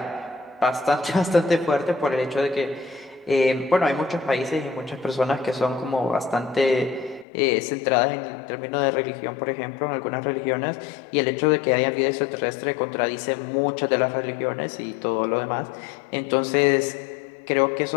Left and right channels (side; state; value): right; drops out; at 7.2 s